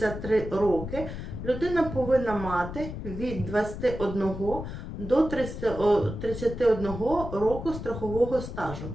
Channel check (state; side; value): noise; left; rumble, 8 dB below the sound